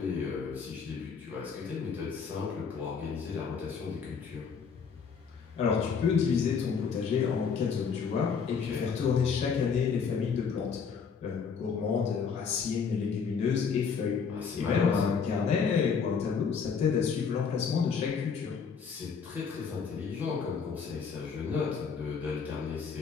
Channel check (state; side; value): quieter; right; 6.0 dB